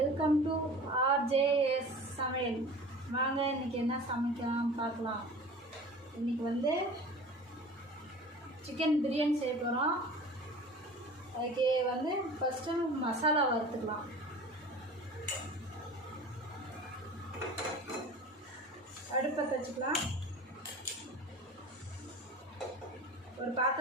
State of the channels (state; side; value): normal; both; correlation 0.39